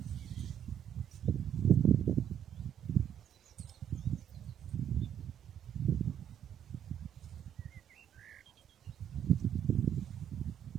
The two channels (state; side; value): quieter; left; 9.6 dB